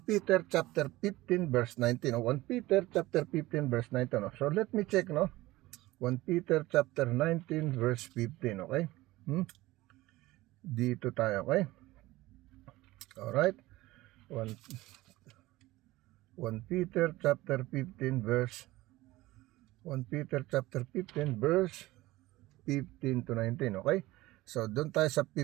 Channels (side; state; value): left; quieter; 18.5 dB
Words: Peter chapter 15 verse 19, no? 1 Peter chapter 15 verse 19, no? So let me check, no? 1 Peter chapter 19 verse 15, okay? Dito tayo, okay? Alright. 1 Peter chapter 15 verse 1 Peter chapter 15 verse 15 to 19, okay? So, doon tayo sa